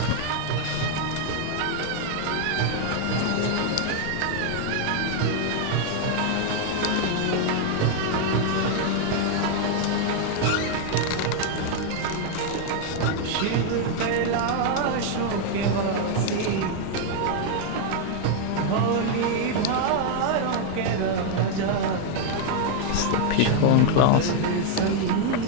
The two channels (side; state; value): both; different; correlation 0.00